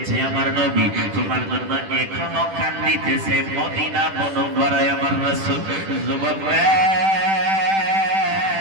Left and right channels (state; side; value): late; left; 10 ms